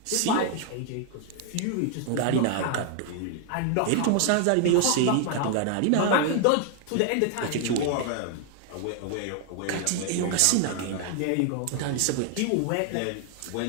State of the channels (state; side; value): different; both; correlation 0.00